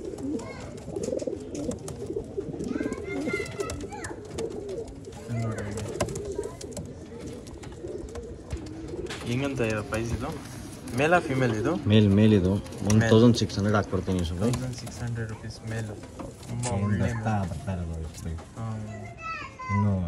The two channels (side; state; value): both; identical; correlation 1.00